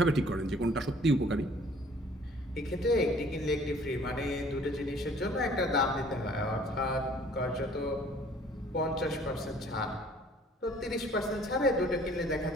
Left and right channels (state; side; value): normal; both; correlation 0.55